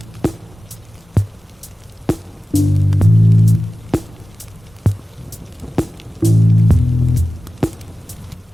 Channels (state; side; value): normal; both; correlation 0.95